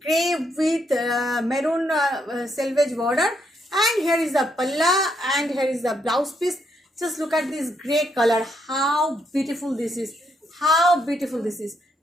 grey with maroon selvage border, and here is the palla and here is the blouse piece. Just look at this grey color, how beautiful this is, how beautiful this is,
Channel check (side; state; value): both; normal; correlation 0.75